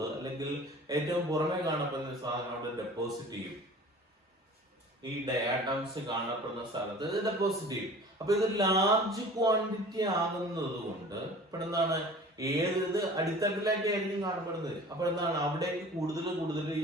അല്ലെങ്കിൽ ഏറ്റവും പുറമെ കാണപ്പെടുന്ന സാധനം അവിടെ ഡെപ്പോസിറ്റ് ചെയ്യും. ഈ ഡയാറ്റംസ് കാണപ്പെടുന്ന സ്ഥലത്ത് ഇത് ഡെപ്പോസിറ്റ് ചെയ്യും. അപ്പൊ ഇത് ലാർജ് ക്വാണ്ടിറ്റി ആകുന്നത് കൊണ്ട് ഇപ്പോൾ എന്താണ്, ഏത് അടിത്തട്ടിലേക്ക് ആയിരിക്കും കാണപ്പെടുന്നത്. അപ്പൊ എന്താണ്, അവിടേക്ക് കൂടുതൽ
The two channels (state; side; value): normal; both; correlation 0.43